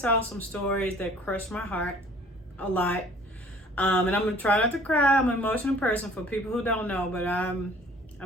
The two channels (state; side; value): normal; both; correlation 0.53